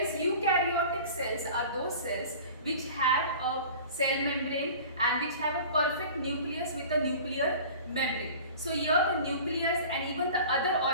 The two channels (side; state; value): both; inverted; correlation -0.41